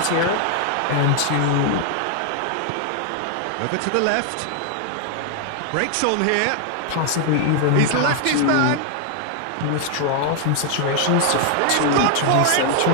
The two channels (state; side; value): different; both; correlation 0.00